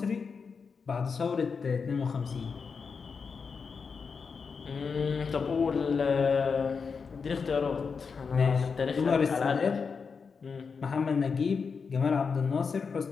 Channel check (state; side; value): quieter; right; 5.4 dB